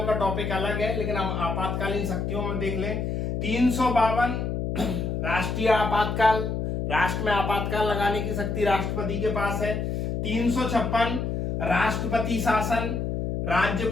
का टॉपिक अलग है, लेकिन हम आपातकालीन शक्तियों में देख लें। 352 राष्ट्रीय आपातकाल, राष्ट्र में आपातकाल लगाने की शक्ति राष्ट्रपति के पास है। 356 राष्ट्रपति शासन,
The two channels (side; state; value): left; noise; hum, 2 dB below the sound